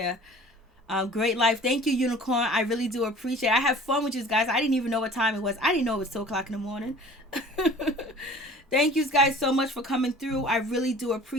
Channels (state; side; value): normal; both; correlation 0.45